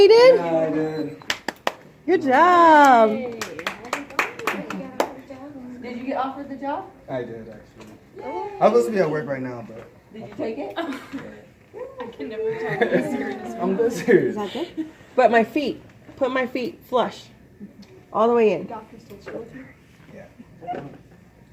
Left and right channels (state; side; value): identical; both; correlation 1.00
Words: Yeah, I did. Good job. Hey. you get offered the job? I did actually. I'm supposed to be at work right now, but Did you take it? I can never tell you serious. I'm dead serious. Is that good? But my feet. Put my feet flush. All the way in. Doctor still chill with you? Yeah.